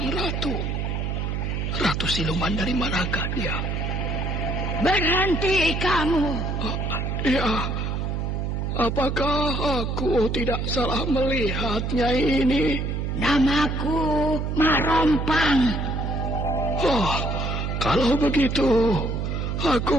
ratu? Ratu siluman dari manakah dia? Berhenti kamu. Ya, apakah aku tidak salah melihatnya ini? Namaku Mak Rompang. Oh, kalau begitu, aku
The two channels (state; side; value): noise; right; hum, 1 dB below the sound